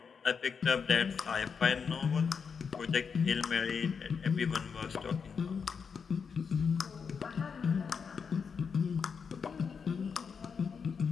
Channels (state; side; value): quieter; right; 6.0 dB